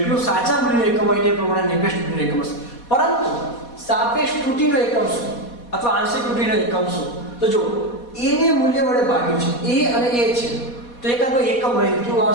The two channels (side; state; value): right; late; 4.2 ms